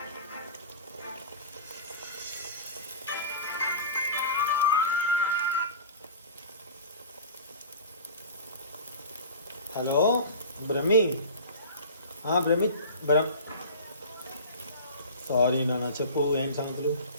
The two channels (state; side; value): inverted; both; correlation -0.36